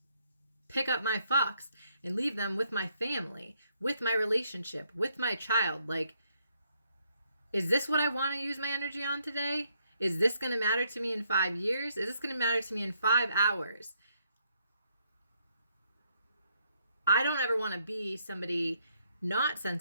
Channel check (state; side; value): inverted; both; correlation -0.73